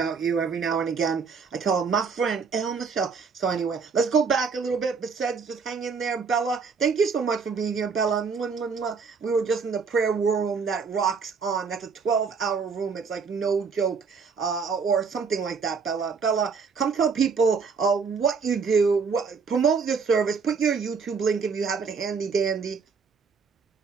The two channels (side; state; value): left; quieter; 5.4 dB